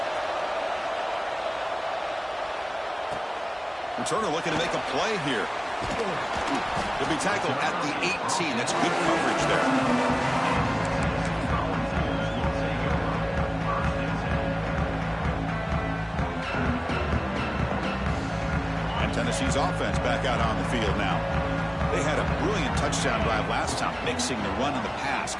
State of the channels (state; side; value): identical; both; correlation 1.00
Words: Returner looking to make a play here. He'll be tackled at the 18. That's good coverage there. And Tennessee's offense back out on the field now. They had a brilliant touchdown drive last time, mixing the run and the pass.